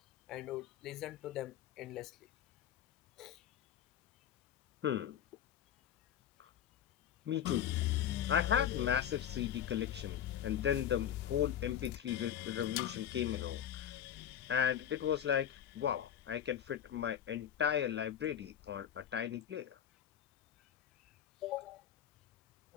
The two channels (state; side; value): quieter; right; 9.9 dB